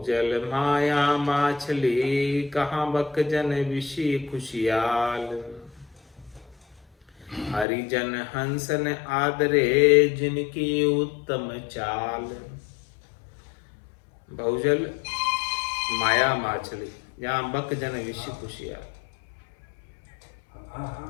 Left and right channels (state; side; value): drops out; right; at 7.7 s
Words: माया माछली कहाँ बक जन विषी खुशियाल, हरिजन हंसन आदरे जिनकी उत्तम चाल। बहुजल माया माछली जहाँ बक जन विषी खुशियाल।